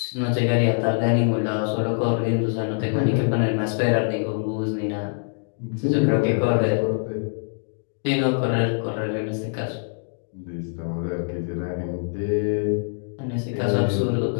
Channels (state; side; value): silent; right; digital silence